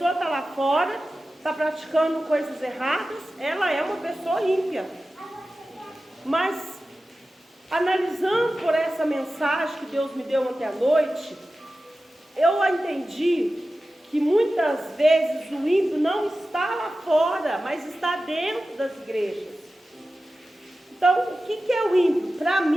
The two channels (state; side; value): normal; both; correlation 0.94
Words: está lá fora, está praticando coisas erradas, ela é uma pessoa ímpia. Mas, analisando por essa mensagem que Deus me deu ontem à noite, eu entendi que muitas vezes o ímpio não está lá fora, mas está dentro das igrejas. Então, o que é o ímpio? Para